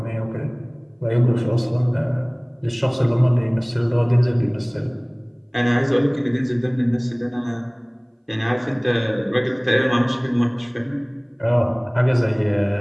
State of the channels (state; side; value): identical; both; correlation 1.00